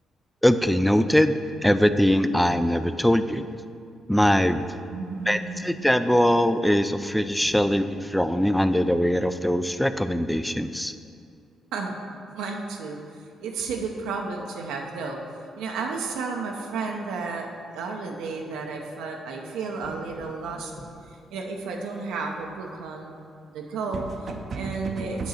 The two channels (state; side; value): normal; both; correlation 0.93